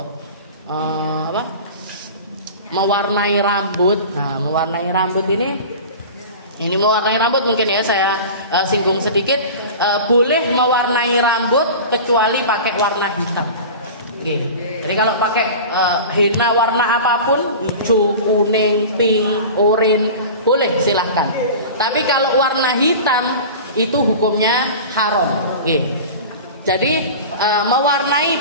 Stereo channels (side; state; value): both; inverted; correlation -0.34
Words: mewarnai rambut. Nah, mewarnai rambut ini mewarnai rambut mungkin ya saya singgung sedikit. Boleh mewarnai rambut kecuali pakai warna hitam. Jadi kalau pakai henna warna apapun, hijau, kuning, pink, oranye, boleh silahkan. Tapi kalau warna hitam itu hukumnya haram. Jadi mewarnai